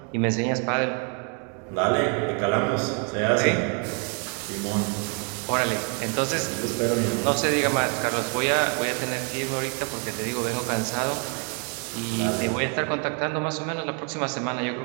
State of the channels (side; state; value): left; quieter; 36.8 dB